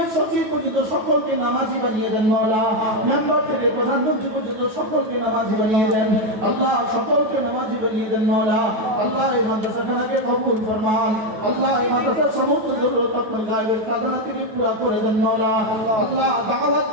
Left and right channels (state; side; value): late; left; 9.2 ms